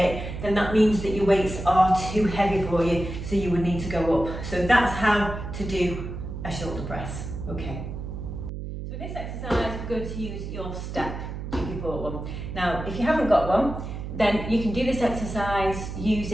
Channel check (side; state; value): right; noise; hum, 7 dB below the sound